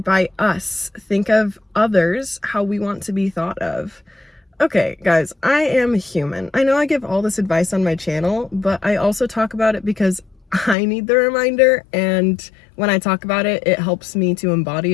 by us. Think of others how we want to be thought of. Okay, guys, I am human. I know I give all this advice on my channel, but I also talk about it because I need the reminder, and when I talk about it, it helps me to embody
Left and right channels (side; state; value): right; drops out; at 10.8 s